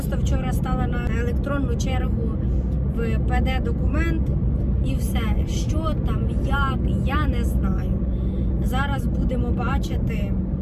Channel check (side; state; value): both; identical; correlation 1.00